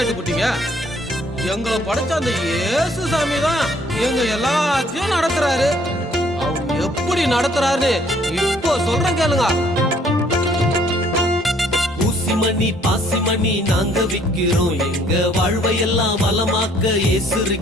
எங்களை படைச்ச அந்த இயேசு சாமி தான் எங்க எல்லாத்தையும் நடத்துறாரு. அவர் எப்படி நடத்துறாரு இப்போ சொல்றேன் கேளுங்க. ஊசிமணி பாசிமணி நாங்க விக்கிறோம், எங்க வாழ்வையெல்லாம் வளமாக்க இயேசு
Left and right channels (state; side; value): normal; both; correlation 0.62